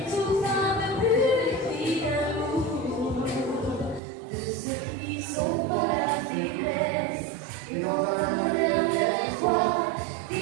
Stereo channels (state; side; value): drops out; left; at 4.0 s